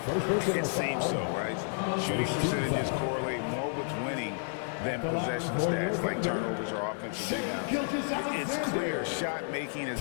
It seems so, right? Shooting percentages correlate more with winning than possession stats like turnovers or offensive rebounds. It's clear shot making has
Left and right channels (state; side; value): silent; right; 57 dB below the other